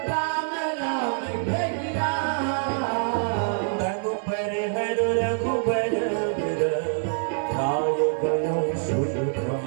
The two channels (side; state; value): left; silent; digital silence